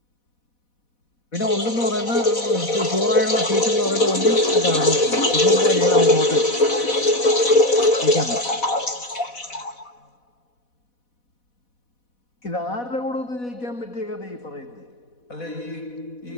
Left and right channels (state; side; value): late; right; 4.1 ms